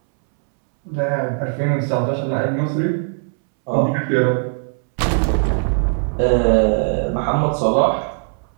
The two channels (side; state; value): left; silent; 65 dB below the other